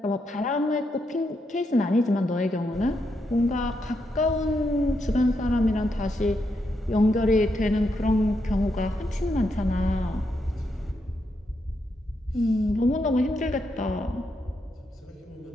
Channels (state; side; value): normal; both; correlation 0.81